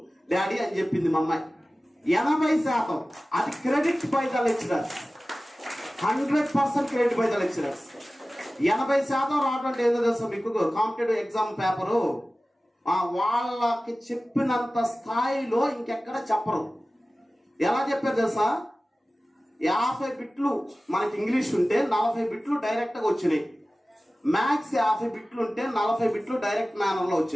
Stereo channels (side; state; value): both; normal; correlation 0.97